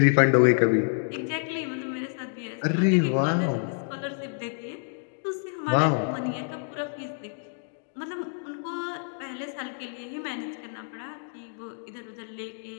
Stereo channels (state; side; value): silent; right; 59 dB below the other